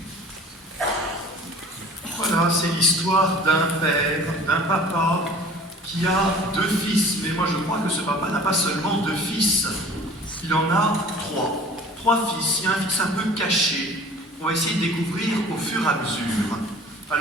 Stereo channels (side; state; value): both; normal; correlation 0.45